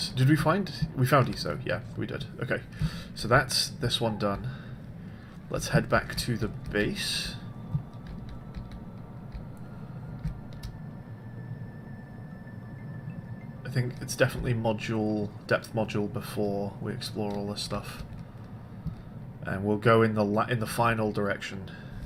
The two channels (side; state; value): both; identical; correlation 1.00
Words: Did we find... We found ESO. Yeah, we did. Okay. So that's this one done. Let's head back to the base. I think it's definitely depth module before we explore all this stuff. And we'll go in the final direction